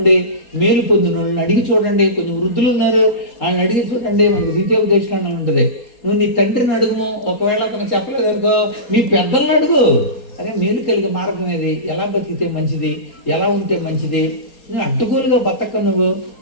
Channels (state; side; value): late; right; 4.3 ms